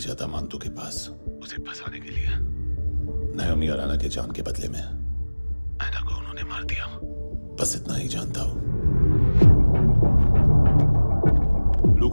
था मांतू के पास उसे फंसाने के लिए। नायोमी और आना के जान के बदले में आना को उन्होंने मार दिया। बस इतना ही जानता हूं। लुक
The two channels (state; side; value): inverted; both; correlation -1.00